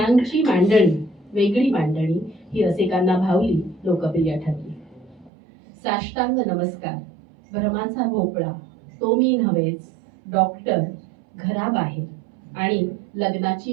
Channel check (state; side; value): drops out; left; at 5.3 s